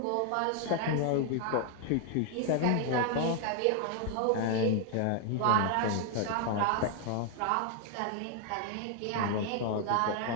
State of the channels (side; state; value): both; different; correlation 0.00